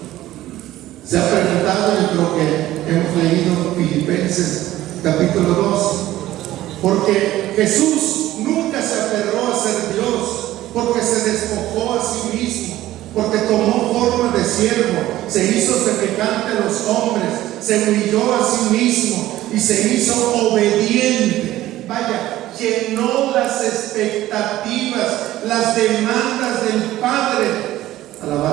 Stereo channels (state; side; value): quieter; left; 15.0 dB